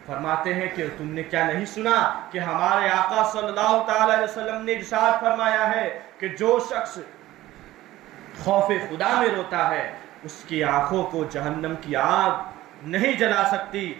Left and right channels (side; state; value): left; quieter; 15.9 dB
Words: فرماتے ہیں کہ تم نے کیا نہیں سنا کہ ہمارے آقا صلی اللہ تعالی علیہ وسلم نے ارشاد فرمایا ہے کہ جو شخص خوف خدا میں روتا ہے اس کی آنکھوں کو جہنم کی آگ نہیں جلا سکتی،